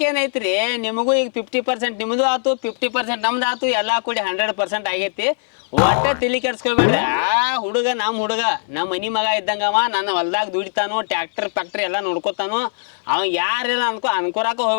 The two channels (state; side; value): silent; right; digital silence